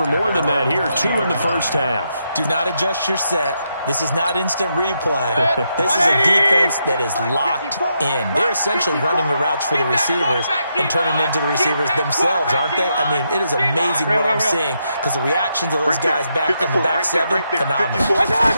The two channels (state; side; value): inverted; both; correlation -0.81